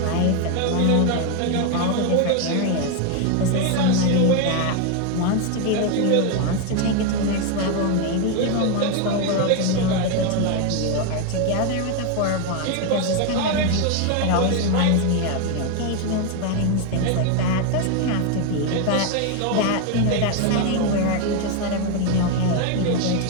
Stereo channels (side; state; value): both; different; correlation 0.01